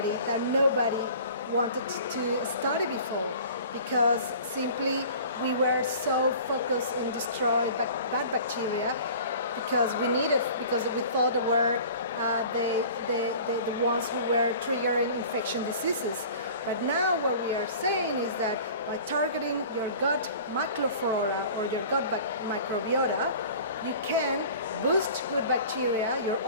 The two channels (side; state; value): both; inverted; correlation -0.44